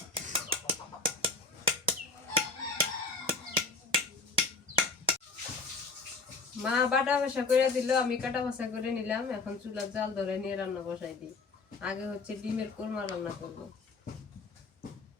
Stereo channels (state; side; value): quieter; right; 3.9 dB